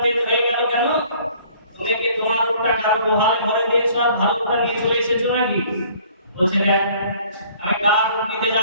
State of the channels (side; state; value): both; inverted; correlation -0.55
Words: তেজ হয়ে গেল কেন? তুমি কি তোমার ওটা কারো গোহালে ভরে দিয়েছো আর ভালো ওটা নিয়ে চলে এসেছো নাকি? বলছে, দেখ, আমি কার উট নিতে